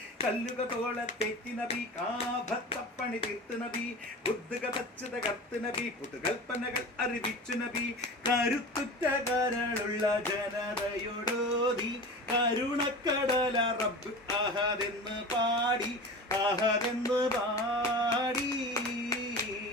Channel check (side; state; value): both; normal; correlation 0.33